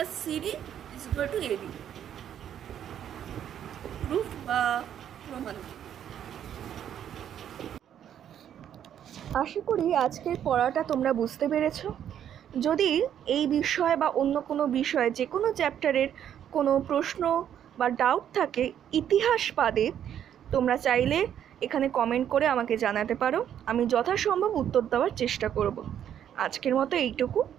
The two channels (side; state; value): left; quieter; 9.8 dB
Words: CD is equal to AB. Proof বা প্রমাণ। আশা করি আজকের পড়াটা তোমরা বুঝতে পেরেছো। যদি এই বিষয় বা অন্য কোনো বিষয়ে, যে কোনো চ্যাপ্টারের কোনো প্রশ্ন বা ডাউট থাকে ইতিহাস বাদে, তোমরা চাইলে এখানে কমেন্ট করে আমাকে জানাতে পারো, আমি যথাসম্ভব উত্তর দেওয়ার চেষ্টা করব। আজকের মতো এইটুকু,